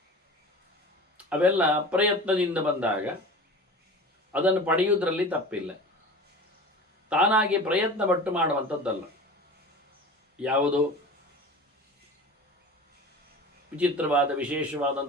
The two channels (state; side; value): normal; both; correlation 0.36